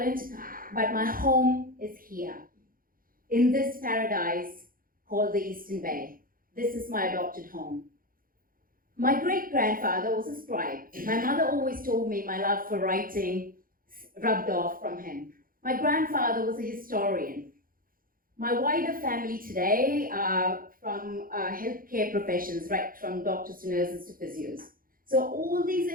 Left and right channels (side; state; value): left; late; 0.41 ms